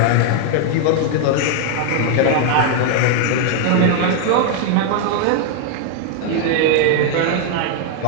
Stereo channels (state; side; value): different; both; correlation 0.00